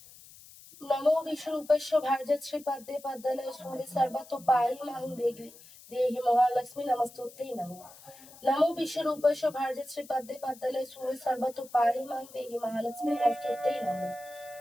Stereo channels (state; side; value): noise; left; hiss, 21 dB below the sound